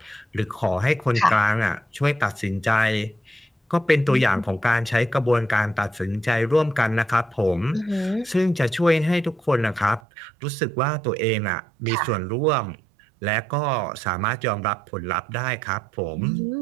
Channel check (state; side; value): drops out; left; at 10.0 s